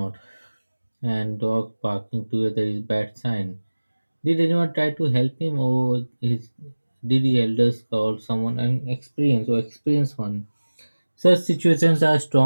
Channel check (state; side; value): inverted; both; correlation -1.00